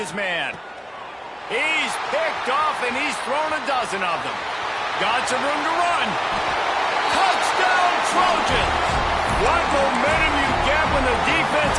man. He's picked off, and he's thrown a dozen of them. Got some room to run. Touchdown, Trojans! What momentum you get when the defense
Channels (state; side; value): identical; both; correlation 1.00